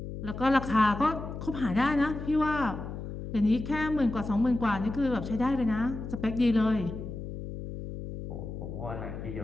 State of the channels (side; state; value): left; noise; hum, 8 dB below the sound